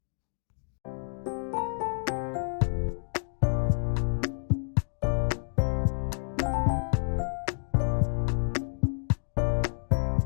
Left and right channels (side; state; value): right; silent; digital silence